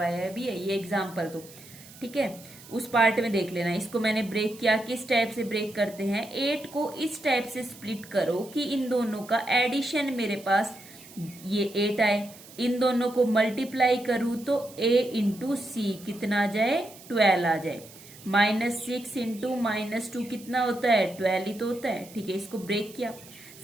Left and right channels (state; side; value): noise; right; hiss, 20 dB below the sound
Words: भी है, ये एग्जाम्पल तो। ठीक है, उस पार्ट में देख लेना। इसको मैंने ब्रेक किया, किस टाइप से ब्रेक करते हैं, 8 को इस टाइप से स्प्लिट करो कि इन दोनों का एडिशन मेरे पास ये 8 आए, इन दोनों को मल्टीप्लाई करूं तो a इंटू सी कितना आ जाए, 12 आ जाए। -6 इंटू -2 कितना होता है, 12 ही तो होता है। ठीक है, इसको ब्रेक किया,